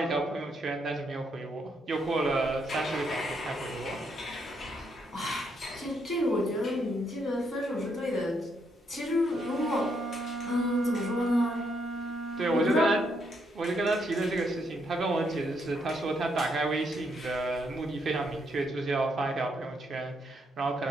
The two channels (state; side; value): normal; both; correlation 0.76